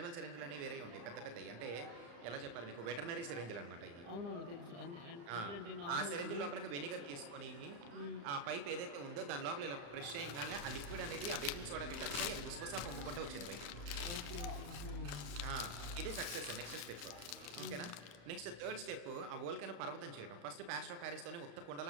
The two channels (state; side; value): late; left; 35 ms